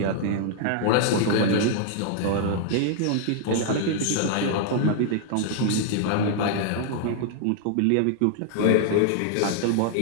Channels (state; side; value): different; both; correlation -0.01